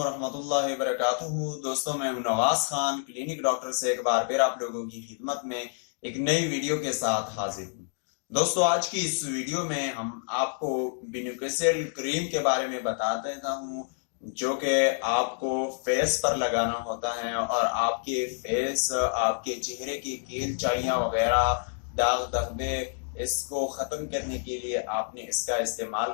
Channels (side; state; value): right; silent; digital silence